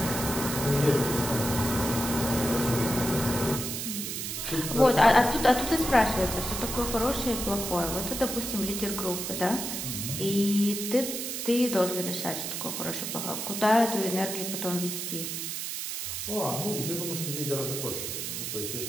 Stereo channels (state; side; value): noise; right; hiss, 4 dB below the sound